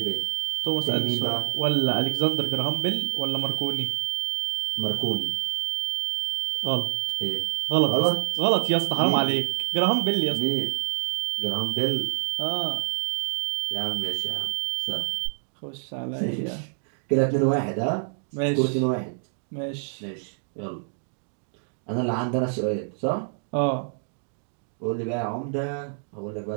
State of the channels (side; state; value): left; silent; digital silence